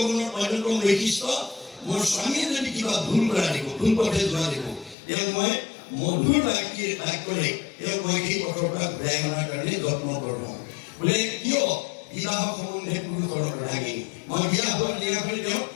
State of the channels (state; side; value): drops out; right; at 5.0 s